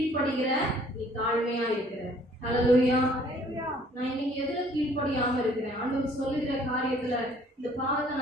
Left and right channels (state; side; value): normal; both; correlation 0.58